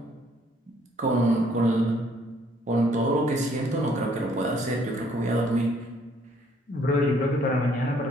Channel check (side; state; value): both; normal; correlation 0.64